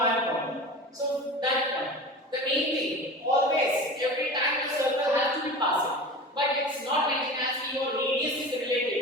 point. So that point. The main thing, always, every time the circle has to be passing. But it's not mentioned as your radius is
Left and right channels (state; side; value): normal; both; correlation 0.33